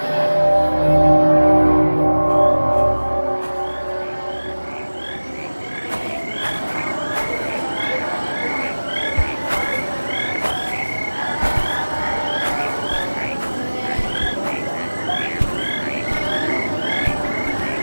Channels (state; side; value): inverted; both; correlation -1.00